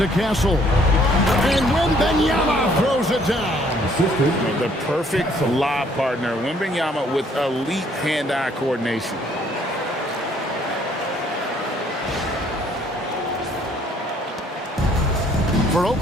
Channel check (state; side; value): normal; both; correlation 0.63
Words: Castle. And Wembanyama throws it down. The perfect lob partner. Wembanyama with elite hand-eye coordination. For